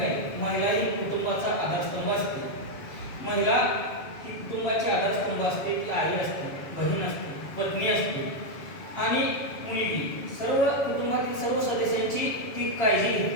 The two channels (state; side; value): late; right; 7.2 ms